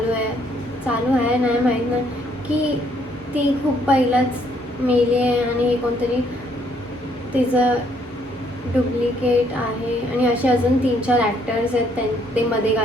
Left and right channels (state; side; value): normal; both; correlation 0.68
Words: आहे नाही माहीत नाही की ती खूप पहिलाच मेली आहे आणि हे कोणतरी तिचं डुप्लिकेट आहे. आणि असे अजून 3-4 ॲक्टर्स आहेत ते मध्ये